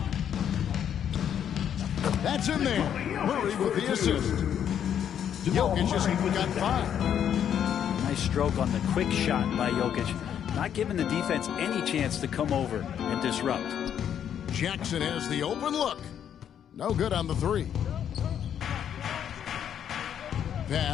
That's in there. Murray with the assist. Jokic has got 5. Nice stroke on the quick shot by Jokic. Not giving the defense any chance to come over and disrupt. Jackson has the open look. No good on the 3.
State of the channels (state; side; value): quieter; right; 9.2 dB